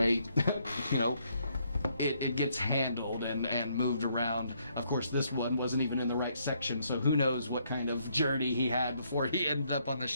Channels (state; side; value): inverted; both; correlation -0.72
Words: it gets handled and moved around. Of course, this one wasn't even in the right section, so who knows what kind of journey he had before he ended up on the